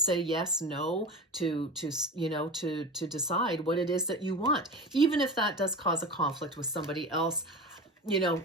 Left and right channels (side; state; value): both; normal; correlation 0.29